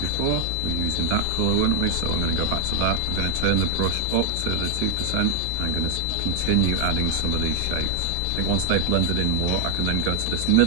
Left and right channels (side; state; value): both; different; correlation 0.00